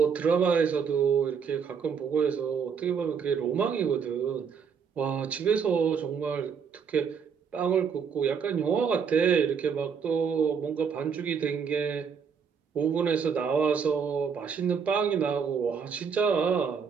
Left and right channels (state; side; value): quieter; left; 6.5 dB